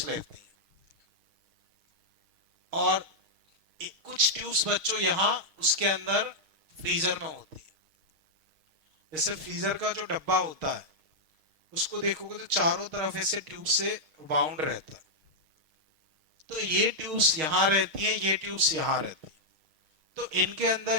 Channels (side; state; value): left; late; 6.4 ms